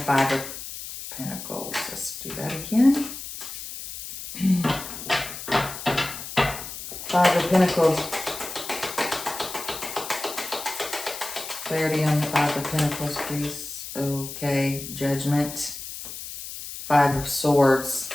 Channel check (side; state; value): left; noise; hiss, 10 dB below the sound